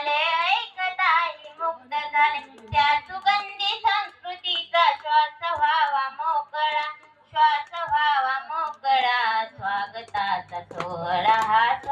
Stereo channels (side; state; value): both; identical; correlation 1.00